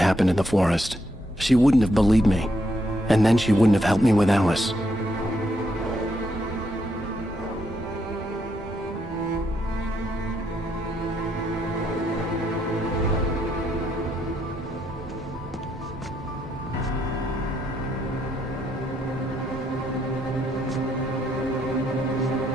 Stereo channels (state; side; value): normal; both; correlation 0.77